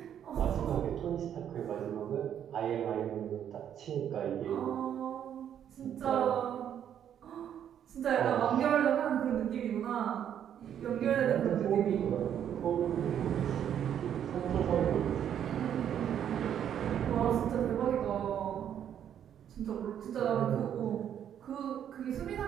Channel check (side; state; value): left; quieter; 9.5 dB